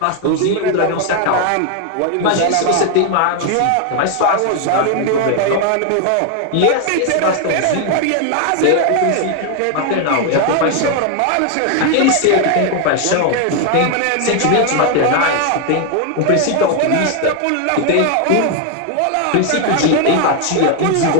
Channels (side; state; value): both; different; correlation 0.01